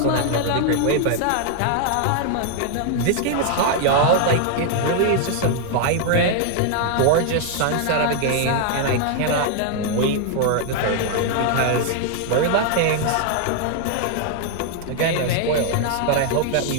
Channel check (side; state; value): both; different; correlation 0.00